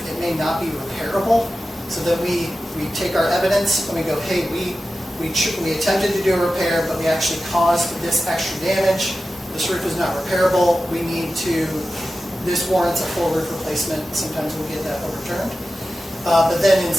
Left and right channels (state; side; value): normal; both; correlation 0.94